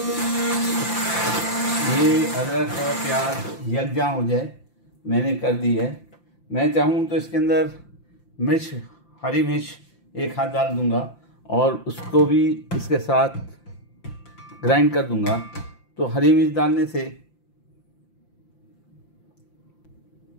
ये अदरक और प्याज यकजा हो जाए मैंने कर दी है। मैं चाहूँ तो इसके अंदर मिर्च, हरी मिर्च एक हाथ डाल दूँगा और उसको भी इसके साथ ग्राइंड कर दूँगा। तो हरी मिर्च डालने से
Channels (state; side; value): late; right; 5.8 ms